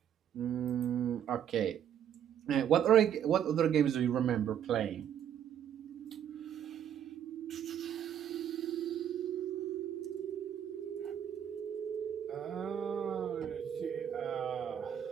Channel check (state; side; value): quieter; left; 9.6 dB